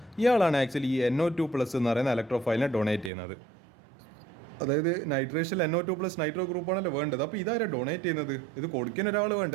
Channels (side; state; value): left; drops out; at 3.1 s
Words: ഇയാളാണ് ആക്ച്വലി ഈ NO2+ എന്ന് പറയുന്ന ഇലക്ട്രോഫൈലിനെ ഡൊണേറ്റ് ചെയ്യുന്നത്. അതായത് നൈട്രേഷൻ NO2+ നൈട്രോ ഗ്രൂപ്പാണല്ലോ വേണ്ടത്. അപ്പോൾ ഇതാരാ ഡൊണേറ്റ് ചെയ്യുന്നത്? ഇത് കൊടുക്കാൻ ഒരാൾ